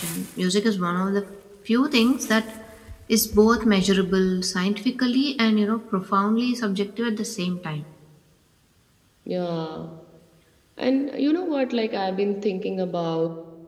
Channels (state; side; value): identical; both; correlation 1.00